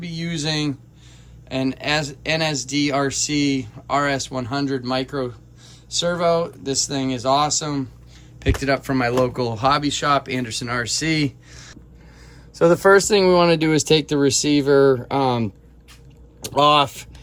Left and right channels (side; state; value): both; identical; correlation 1.00